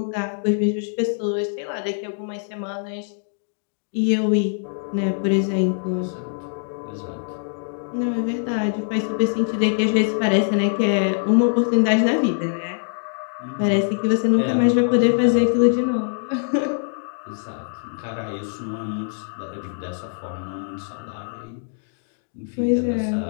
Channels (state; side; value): silent; right; digital silence